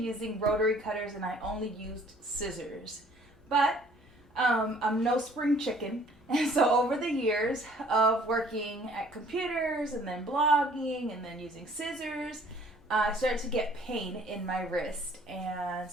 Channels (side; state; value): both; normal; correlation 0.56